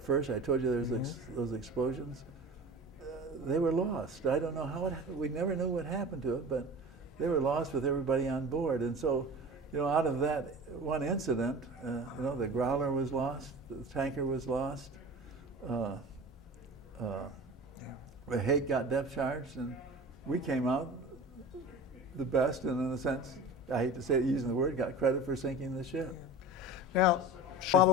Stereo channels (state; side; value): normal; both; correlation 0.36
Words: first, I told you there's those explosions. They were lost. I don't know how we never knew what happened to it, but they were lost with everybody on board. And so, out of that one incident, the Growler was lost, the tanker was lost. The Hake got depth charged, and we came out the best, and in a sense, I hate to say it using the word, got credit for sinking the ship. Now,